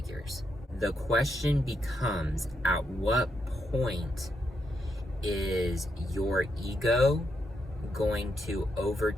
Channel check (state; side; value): normal; both; correlation 0.81